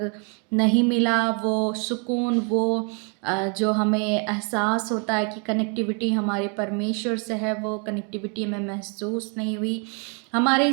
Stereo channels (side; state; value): left; quieter; 37.0 dB